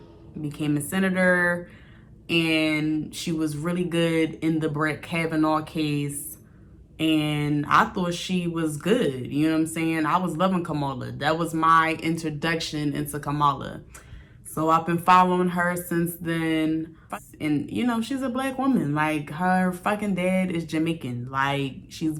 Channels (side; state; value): both; identical; correlation 1.00